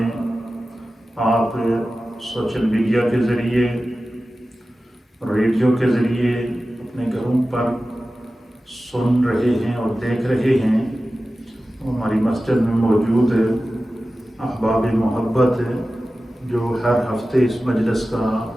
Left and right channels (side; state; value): both; normal; correlation 0.95